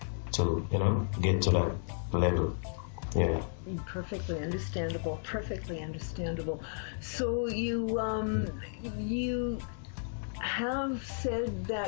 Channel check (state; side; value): silent; right; digital silence